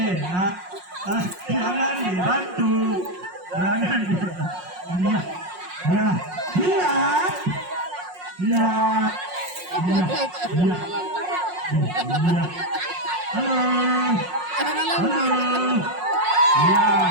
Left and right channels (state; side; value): late; left; 5.5 ms